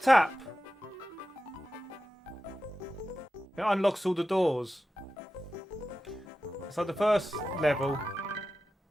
tap. It unlocks all the doors. So the first level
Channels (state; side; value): normal; both; correlation 0.93